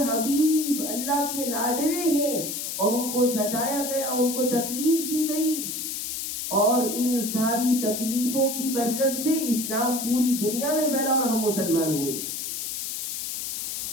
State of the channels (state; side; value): noise; left; hiss, 4 dB below the sound